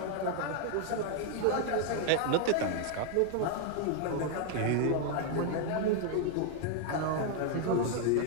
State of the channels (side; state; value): both; different; correlation 0.00